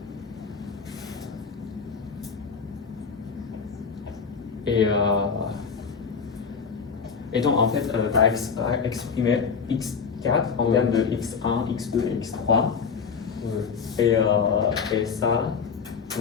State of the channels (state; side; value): quieter; right; 5.9 dB